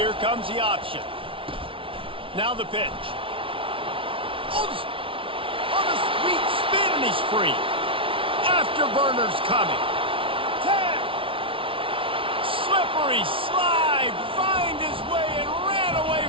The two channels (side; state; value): left; late; 0.25 ms